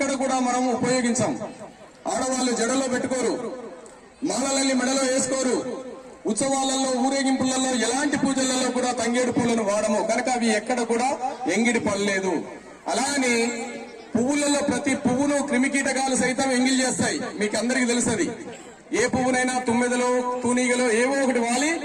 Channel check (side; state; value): both; identical; correlation 1.00